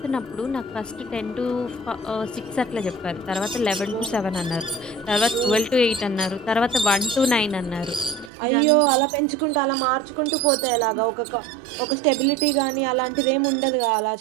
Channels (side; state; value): left; drops out; at 8.3 s